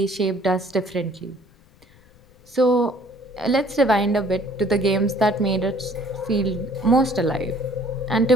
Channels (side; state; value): left; noise; rumble, 29 dB below the sound